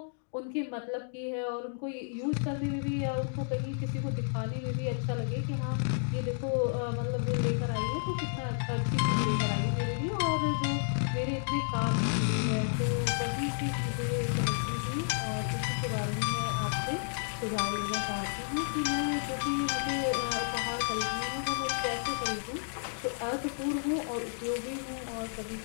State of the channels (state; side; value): silent; right; digital silence